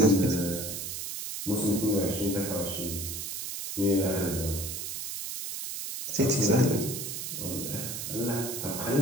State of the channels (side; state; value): right; noise; hiss, 5 dB below the sound